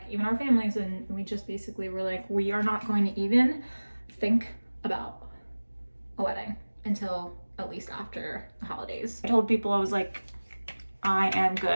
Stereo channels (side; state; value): both; inverted; correlation -1.00